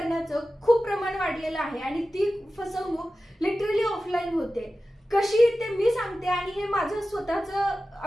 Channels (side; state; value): both; normal; correlation 0.94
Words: खूप प्रमाण वाढलेलं आहे आणि ती फसवणूक लिटरली ऑफलाईन होते. कशी ते मी सांगते आणि हे माझं स्वतःचा